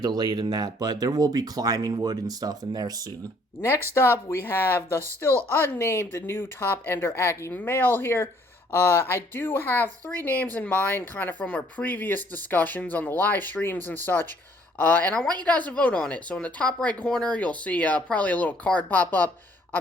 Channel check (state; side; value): normal; both; correlation 0.62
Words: in that, but there will be climbing wood and stuff in there soon. Next up, we have the still unnamed new top Ender Ackee male here. I do have 3 names in mind, kind of from our previous discussions on the live streams and such. And I want you guys to vote on it. So in the top right corner, you'll see probably a little card pop up.